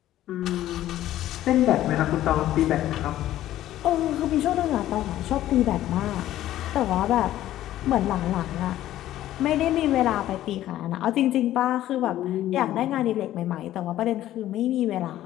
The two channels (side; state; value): right; quieter; 13.5 dB